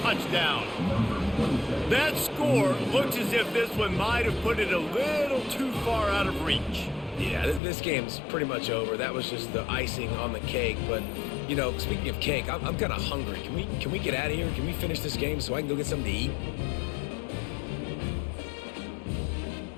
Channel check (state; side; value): drops out; right; at 7.6 s